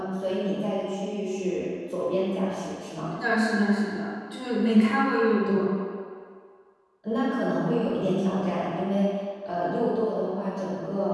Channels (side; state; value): both; identical; correlation 1.00